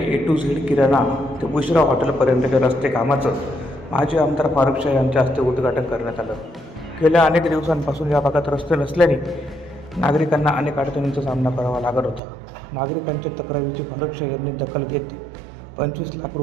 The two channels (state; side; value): drops out; left; at 12.2 s